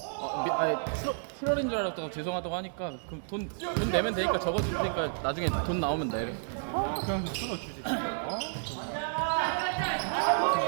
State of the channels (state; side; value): silent; left; 57 dB below the other